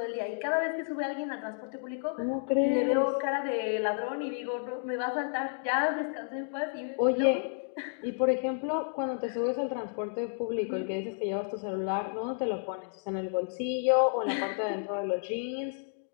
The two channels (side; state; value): right; silent; digital silence